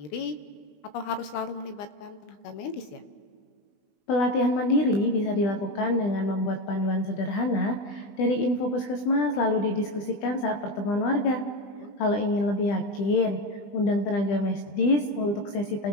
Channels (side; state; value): right; late; 20 ms